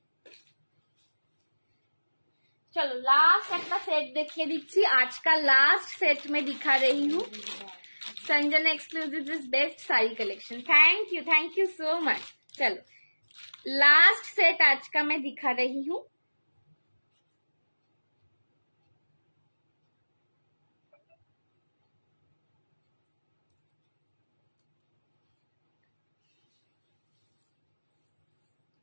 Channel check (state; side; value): inverted; both; correlation -1.00